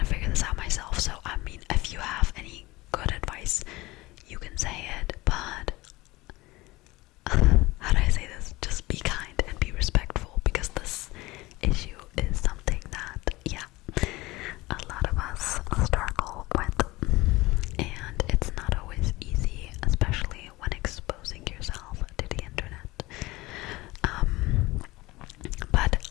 to figure this out myself. So I mean, if you have any good advice, you can say it, but how do I say this? Just be kind and be respectful, because this issue is something that, yeah, a lot of us struggle with, and it's not always easy, especially when exposing yourself to the internet. But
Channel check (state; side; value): quieter; right; 20.5 dB